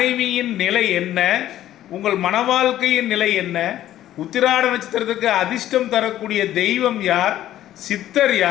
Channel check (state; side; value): quieter; right; 12.8 dB